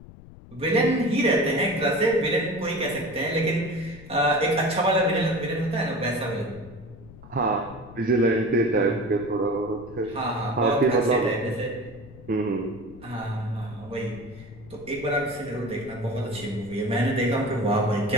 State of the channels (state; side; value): noise; left; rumble, 19 dB below the sound